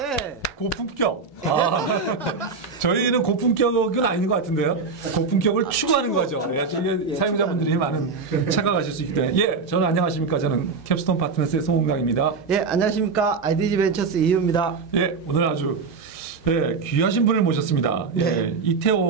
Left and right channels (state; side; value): quieter; left; 4.8 dB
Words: 고품격. 저희는 고품격은 아닌 것 같은데요. 고품격을 추구하는 거죠. 저희 사용자분들이 많은 착각하실 수 있기 때문에. 예, 저는 안녕하십니까. 저는 캡스톤 파트너스의 송홍강입니다. 예, 안녕하십니까. IDG 벤처스 이유입니다. 예, 오늘 아주 귀하신 분을 모셨습니다. 네. 예,